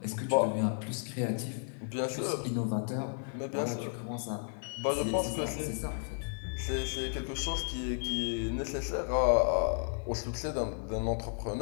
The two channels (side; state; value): right; silent; 56 dB below the other